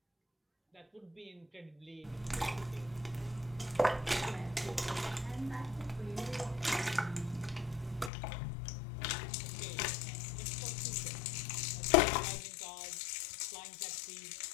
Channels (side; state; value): right; drops out; at 8.1 s